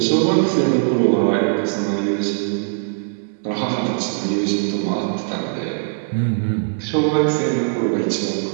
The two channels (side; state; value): left; silent; digital silence